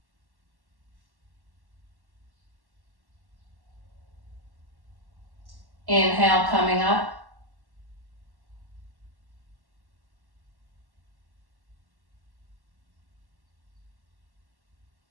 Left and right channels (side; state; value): left; late; 1.1 ms